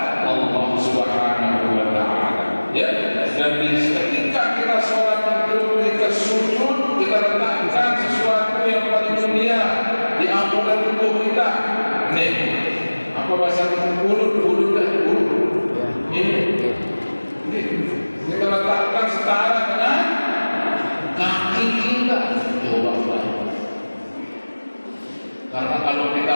Allah Subhanahu wa Ta'ala. Ya, dan di ketika kita sholat itu kita sujud, kita letakkan sesuatu yang paling mulia di ampunan tubuh kita. Nih, apa bahasa mulut dah mulut. Ini kita letakkan setara dengan kaki kita. Coba karena kalau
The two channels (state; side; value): inverted; both; correlation -1.00